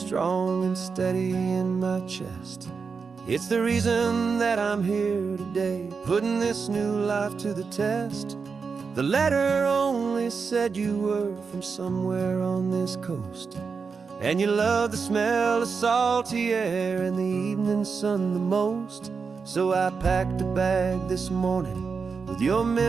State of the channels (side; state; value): left; quieter; 5.3 dB